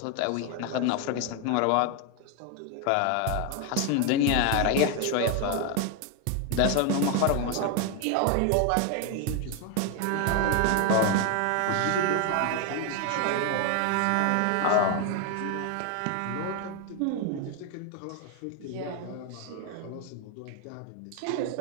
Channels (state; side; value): different; both; correlation 0.01